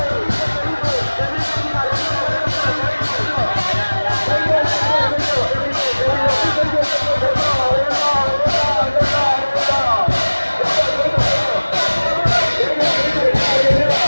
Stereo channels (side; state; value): both; inverted; correlation -1.00